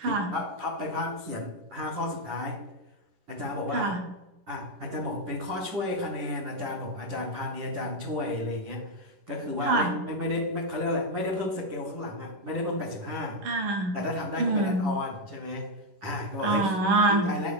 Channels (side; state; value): left; late; 11 ms